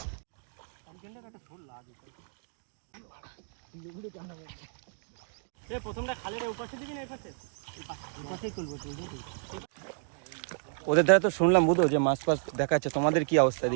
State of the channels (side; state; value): left; silent; 57 dB below the other